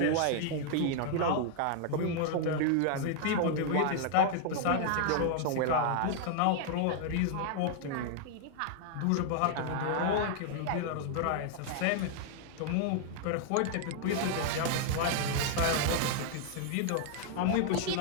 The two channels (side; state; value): both; different; correlation 0.00